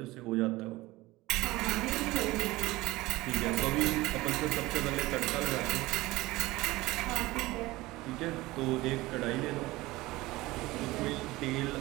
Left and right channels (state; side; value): quieter; left; 19.5 dB